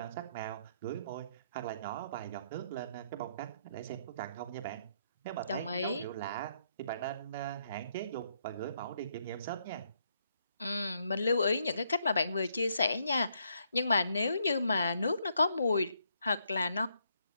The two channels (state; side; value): inverted; both; correlation -0.74